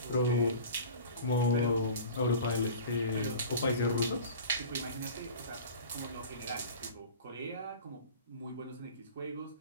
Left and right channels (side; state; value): both; inverted; correlation -0.39